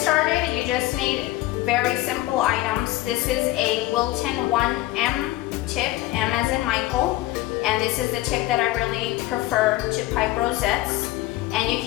you just need very simple items. This is a Wilton 1M tip, M as in Michael. And this is the tip that I really prefer to pipe rosettes. And you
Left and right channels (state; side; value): quieter; right; 17.0 dB